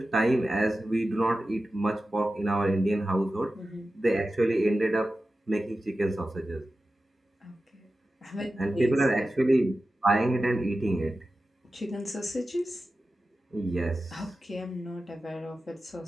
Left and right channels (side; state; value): both; normal; correlation 0.93